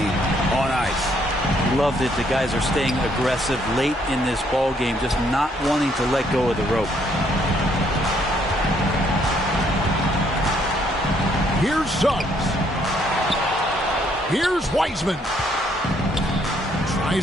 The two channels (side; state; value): both; normal; correlation 0.69